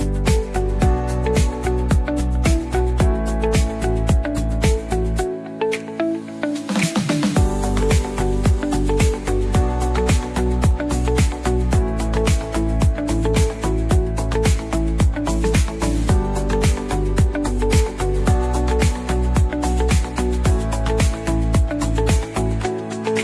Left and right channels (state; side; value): identical; both; correlation 1.00